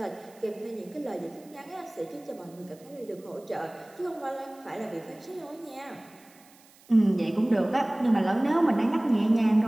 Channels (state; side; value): noise; right; hiss, 27 dB below the sound